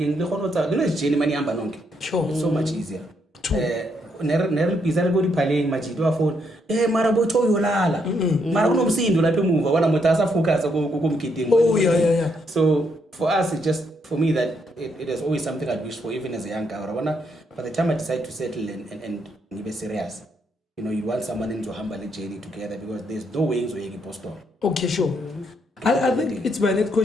Sure. So much easier. Never pizza go playing majido phone. Mara bocho yolala. Mara no msindo la move. Wana mutasa focus go. Oh yeah. So for us, it's just for me that it is always something I'd wish for, even as a young guy. By the time I decide to settle and be serious, you want someone into humble journey together because there's no ways where you can post on. Okay, sure. I think it's my next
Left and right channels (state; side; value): normal; both; correlation 0.76